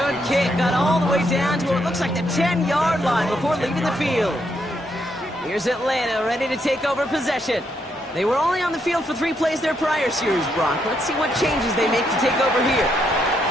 kick. Got all the way down to what looks like the 10-yard line before leaving the field. Here's Atlanta ready to take over possession. They were only on the field for 3 plays their prior series, Brock. Let's see what changes they make to take over here.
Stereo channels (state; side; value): normal; both; correlation 0.77